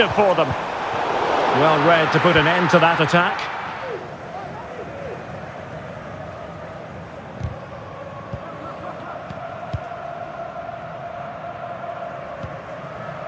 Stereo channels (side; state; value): both; identical; correlation 1.00